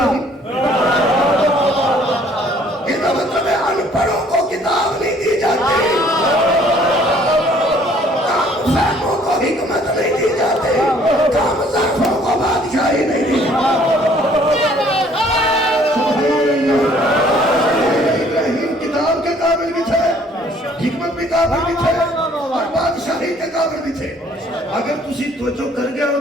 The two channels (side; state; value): both; normal; correlation 0.59